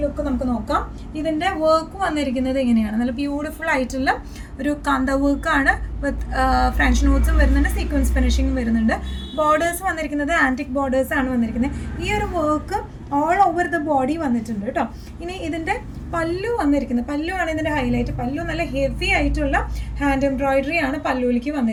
ലുക്ക് നമുക്ക് നോക്കാം. ഇതിൻ്റെ വർക്ക് വന്നിരിക്കുന്നത് എങ്ങനെയാണ്? നല്ല ബ്യൂട്ടിഫുൾ ആയിട്ടുള്ള ഒരു കാന്ത വർക്കാണ് വിത്ത് ഫ്രഞ്ച് നോട്ട്സും വരുന്നുണ്ട്, സീക്വൻസ് ഫിനിഷിങ്ങും വരുന്നുണ്ട്. ബോർഡേഴ്സ് വന്നിരിക്കുന്നത് ആൻറ്റിക് ബോർഡേഴ്സ് ആണ് വന്നിരിക്കുന്നത്. ഈ ഒരു work all over the body വന്നിട്ടുണ്ട് കേട്ടോ. ഇനി ഇതിൻ്റെ പല്ലു വന്നിരിക്കുന്നത്, പല്ലു ആണ് ഇതിൻ്റെ ഹൈലൈറ്റ്. പല്ലു നല്ല ഹെവി ആയിട്ടുള്ള ഹാൻഡ് എംബ്രോയിഡറി ആണ് പല്ലുവിലേക്ക്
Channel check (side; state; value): both; identical; correlation 1.00